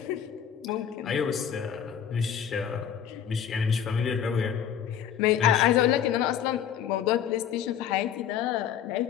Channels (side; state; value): right; quieter; 8.9 dB